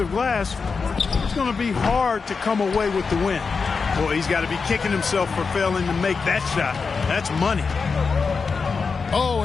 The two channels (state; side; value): quieter; right; 5.0 dB